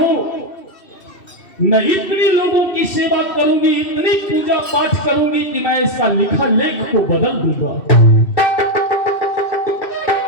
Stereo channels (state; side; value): late; right; 2.6 ms